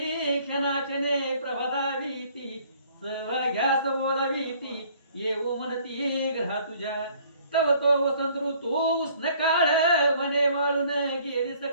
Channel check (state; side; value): inverted; both; correlation -0.58